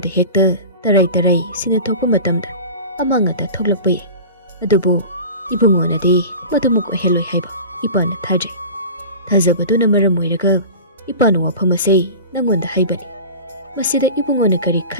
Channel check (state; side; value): inverted; both; correlation -0.34